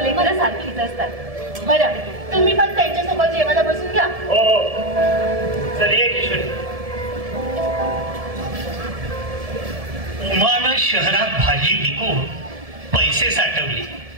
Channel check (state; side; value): late; left; 1.7 ms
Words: सारखीच असतात. बरं तुम्ही पण त्यांच्यासोबत जेवायला बसून घ्या. हो चल ये किशोरी. उमानं शहरात भाजी विकून पैसे साठवले.